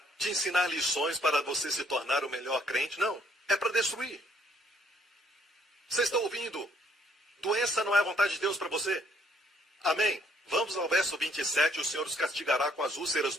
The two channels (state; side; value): normal; both; correlation 0.66